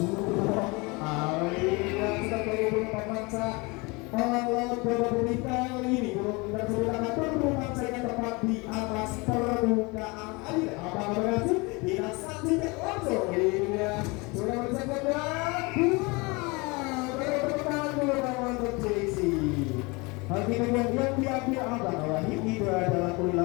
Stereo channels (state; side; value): quieter; right; 26.7 dB